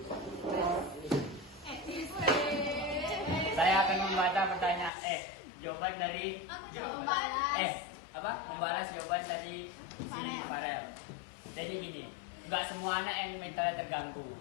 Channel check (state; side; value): drops out; right; at 4.9 s